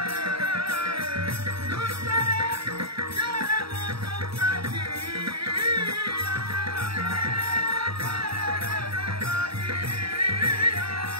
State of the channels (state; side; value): late; left; 0.76 ms